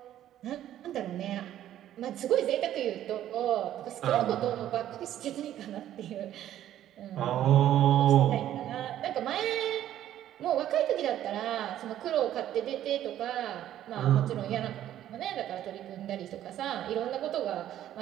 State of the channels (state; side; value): quieter; left; 12.0 dB